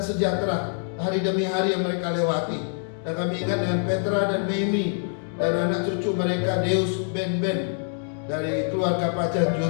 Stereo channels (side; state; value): right; silent; digital silence